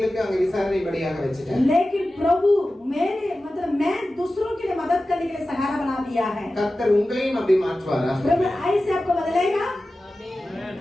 அங்க விசாரணைபடியாக வச்சிட்டார். लेकिन प्रभु मेरे मतलब मैं दूसरों के लिए मदद करने के लिए सहारा बना दिया है। கர்த்தர் உங்களையும் அப்படி மாற்றுவாரா? प्रभु ऐसे आपको बदलेगा।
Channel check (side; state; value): both; normal; correlation 0.95